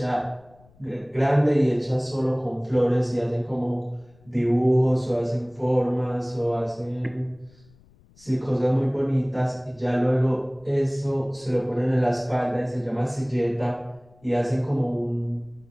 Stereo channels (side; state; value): left; noise; rumble, 28 dB below the sound